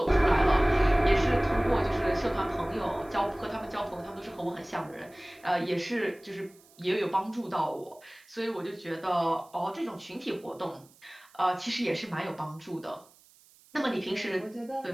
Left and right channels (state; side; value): noise; right; hiss, 28 dB below the sound